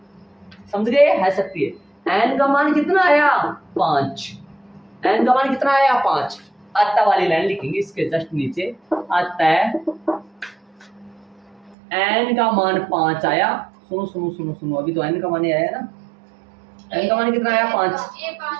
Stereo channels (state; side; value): drops out; left; at 11.8 s